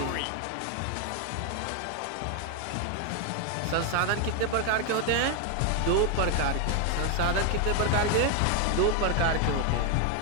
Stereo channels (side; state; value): both; different; correlation 0.01